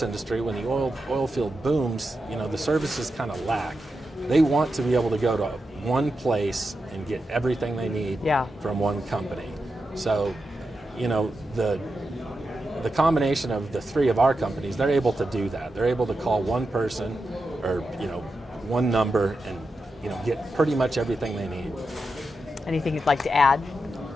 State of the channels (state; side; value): normal; both; correlation 0.88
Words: industry, when the oil field booms, the services kind of lack. They want to be able to go to one place and get everything they need from one company. So, the combination of the three of our companies, they're able to do that. They're able to call one person or, one number and, get pretty much everything they need. Anything you'd like to add?